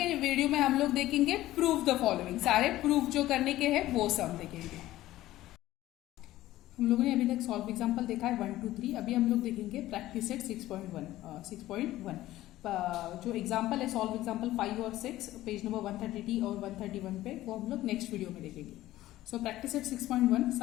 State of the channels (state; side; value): quieter; right; 15.5 dB